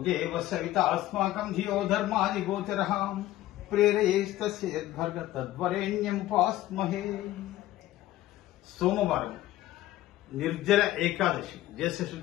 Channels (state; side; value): quieter; right; 15.0 dB